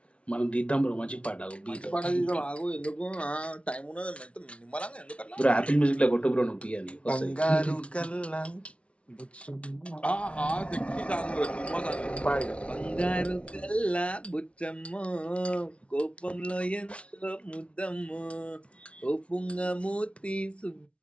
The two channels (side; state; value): right; late; 0.061 ms